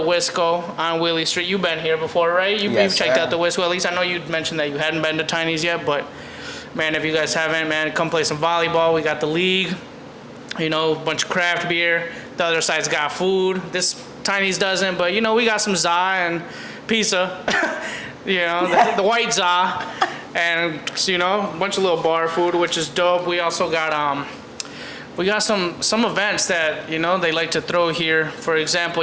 Wisco on Willie Street. You've been here before, right? You've checked out the Wisco. At least I know you mentioned that you hadn't been to Tiny's yet. But, man, if you guys haven't, man, come play some volleyball. We got the league, a bunch of craft beer. The other side's got food. This Tiny's doesn't. But, we got some za and pizza, the white za. And, a bunch of little bar food, which is dope. We also got... We got some events that, they like to throw here. For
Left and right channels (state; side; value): identical; both; correlation 1.00